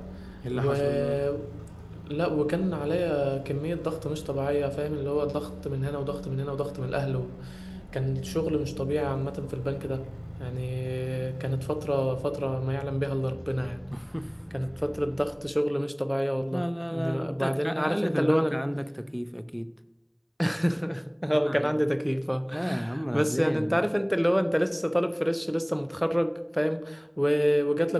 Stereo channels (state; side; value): identical; both; correlation 1.00